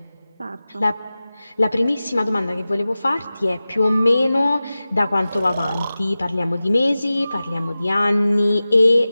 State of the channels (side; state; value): both; inverted; correlation -0.96